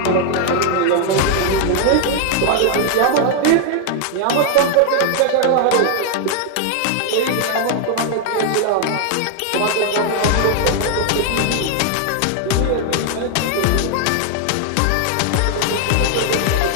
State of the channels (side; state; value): both; different; correlation 0.00